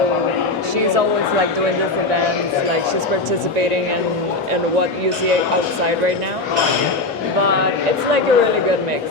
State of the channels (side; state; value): right; quieter; 3.2 dB